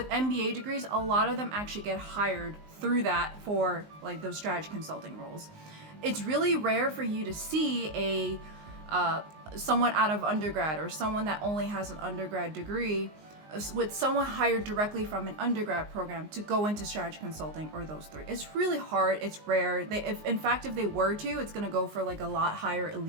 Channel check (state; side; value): late; left; 19 ms